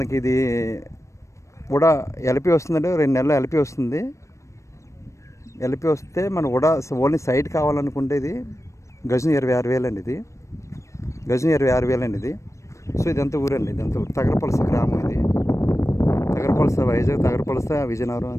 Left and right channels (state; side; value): late; right; 0.15 ms